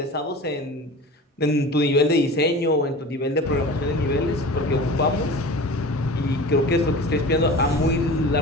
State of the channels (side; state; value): both; normal; correlation 0.36